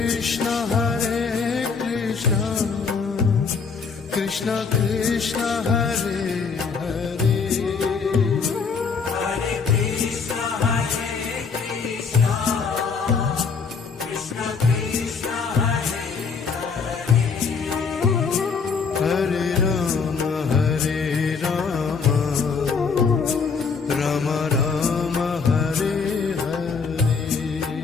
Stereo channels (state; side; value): quieter; right; 5.3 dB